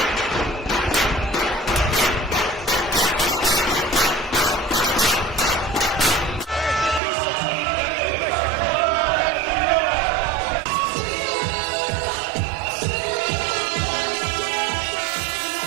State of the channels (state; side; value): drops out; left; at 7.0 s